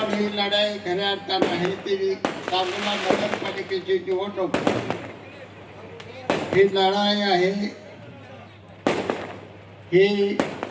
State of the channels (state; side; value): identical; both; correlation 1.00